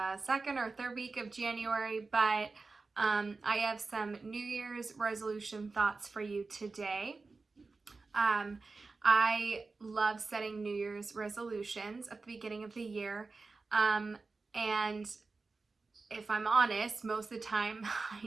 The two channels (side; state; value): left; quieter; 3.9 dB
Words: second or third week of January, but I have some New Year's resolution thoughts for you today. I love setting New Year's resolutions at the beginning of the year. And if I'm honest, most of the time I